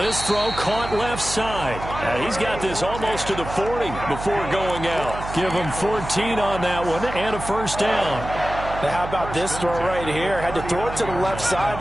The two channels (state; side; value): noise; right; hum, 9 dB below the sound